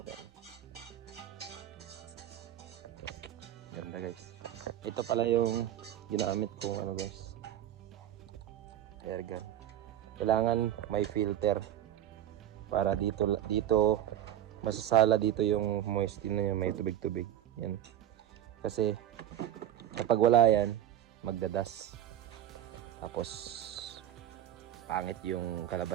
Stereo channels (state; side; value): quieter; left; 11.5 dB